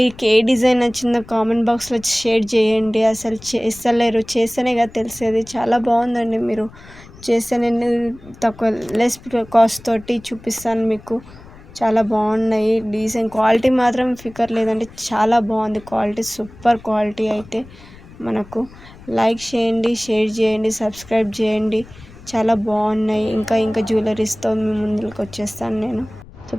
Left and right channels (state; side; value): noise; left; rumble, 20 dB below the sound